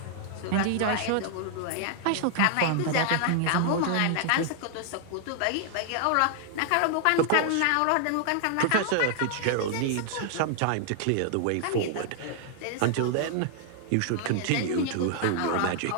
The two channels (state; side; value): different; both; correlation -0.01